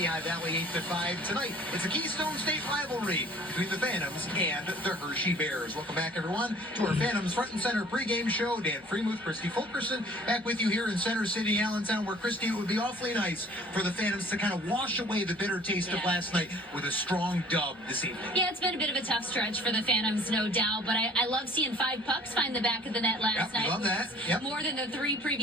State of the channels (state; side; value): normal; both; correlation 0.52